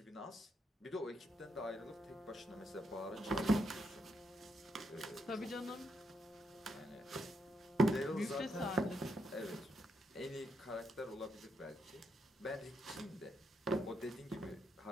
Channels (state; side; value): normal; both; correlation 0.78